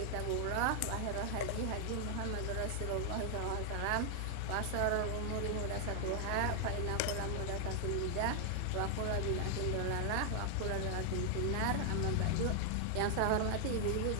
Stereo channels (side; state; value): both; different; correlation 0.00